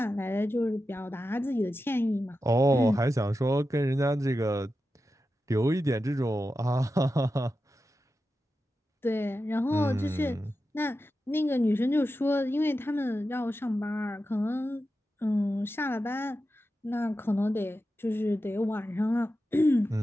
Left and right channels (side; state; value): both; normal; correlation 0.91